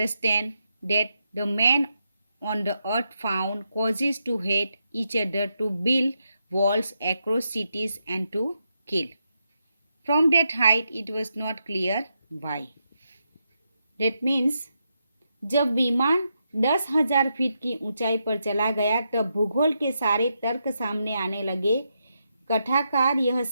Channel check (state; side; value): inverted; both; correlation -0.84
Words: that the men on the earth found causes to hate each other, to build walls across cities, and to kill. From that height, it was not clear why. That means जब विमान 10,000 feet की ऊंचाई पर चला गया तब भूगोल के सारे तर्क सामने आने लगे। कथाकार यह